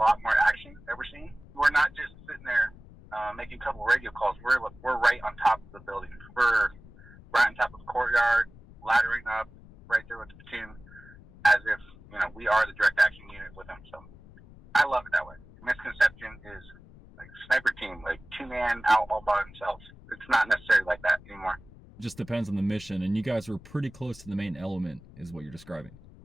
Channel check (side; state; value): left; noise; rumble, 21 dB below the sound